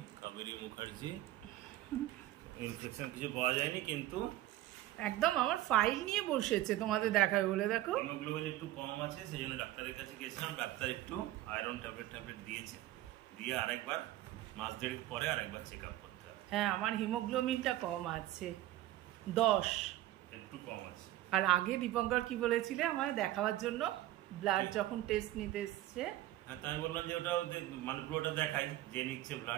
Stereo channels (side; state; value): left; quieter; 15.0 dB